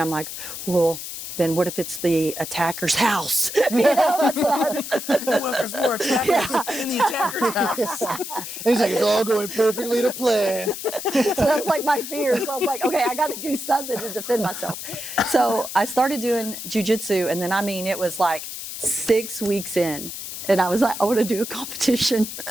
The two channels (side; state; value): left; noise; hiss, 8 dB below the sound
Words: I'm like, well, then what if it's the attacker's house? You know, that's what What if there's more attackers in the attacker's house? And he's like, it's all going perfectly to plan. So that's like my fear. So I was like, okay, I got to do something to defend myself. So I started doing jiu-jitsu, and then, I mean, it was like 6 weeks in, and I was like, I want to do a competition.